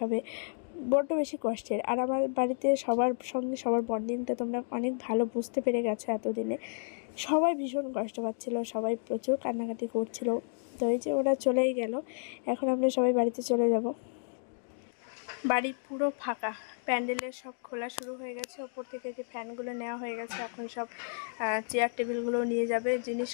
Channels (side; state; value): right; silent; digital silence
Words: বড্ড বেশি কষ্টের। আর আমার বাড়িতে সবার সঙ্গে সবার বন্ডিংটা তোমরা অনেক ভালো বুঝতে পেরে গেছো এতদিনে। সবাই ভীষণ কষ্ট পাচ্ছিলো, সবাই প্রচুর কান্নাকাটি করছিল। তো এই যে ওরা চলেই গেল, এখন আমরা সবাই বাড়িতে চলে যাব। বাড়ি পুরো ফাঁকা, প্যান্ডেলের সব খোলা শুরু হয়ে গেছে, ওপর থেকে যে ফ্যানগুলো নেওয়া হয়ে গেছে, এখন সব চেয়ার টেবিলগুলো নিয়ে যাবে, জিনিস